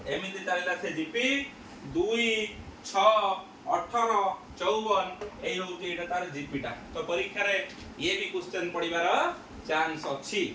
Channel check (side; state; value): both; identical; correlation 1.00